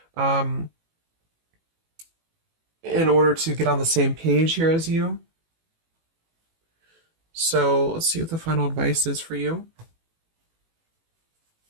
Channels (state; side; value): late; left; 18 ms